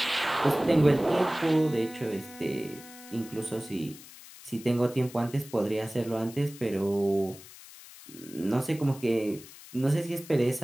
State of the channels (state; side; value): noise; left; hiss, 18 dB below the sound